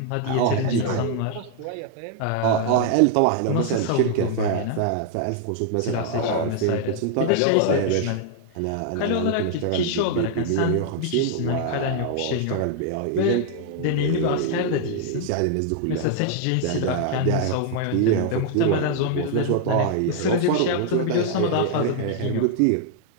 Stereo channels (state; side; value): different; both; correlation 0.00